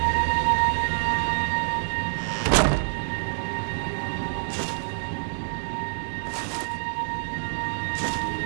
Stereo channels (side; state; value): left; silent; 61 dB below the other